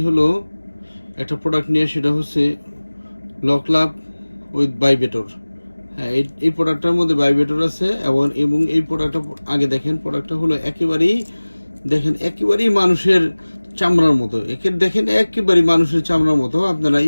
হলো একটা প্রোডাক্ট নিয়ে, সেটা হচ্ছে লকলাভ উইথ ভাইব্রেটর। হ্যাঁ, এই প্রোডাক্টটার মধ্যে ভাইব্রেটর আছে এবং এই প্রোডাক্টটা আগে দেখেন, প্রোডাক্টটা হলো একেবারেই মানুষের চামড়ার মতো। দেখেন একেবারেই মানুষের চামড়ার মতো, আপনারা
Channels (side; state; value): both; inverted; correlation -1.00